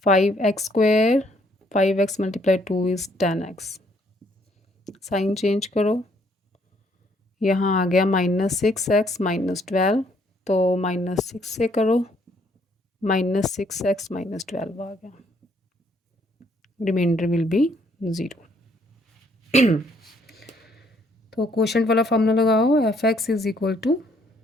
5x² 5x multiply 2 is 10x, sign change करो, यहाँ आ गया -6x माइनस 12, तो -6 से करो, -6x माइनस 12 आ गया, रिमाइंडर विल बी 0। तो क्वोशंट वाला फॉर्मूला लगाओ, fx is equal to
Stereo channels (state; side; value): normal; both; correlation 0.67